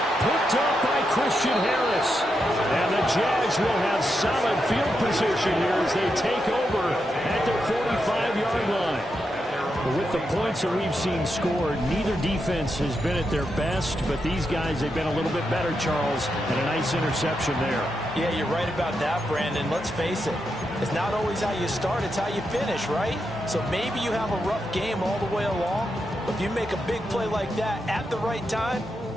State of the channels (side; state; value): both; normal; correlation 0.85